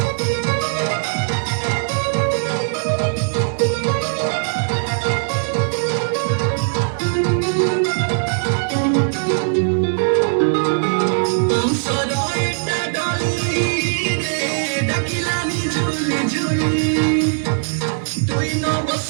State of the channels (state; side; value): silent; left; digital silence